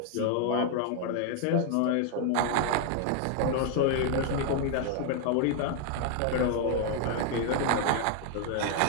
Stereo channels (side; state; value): both; different; correlation 0.00